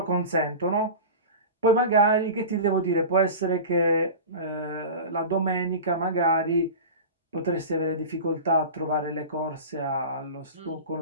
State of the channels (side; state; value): both; inverted; correlation -0.31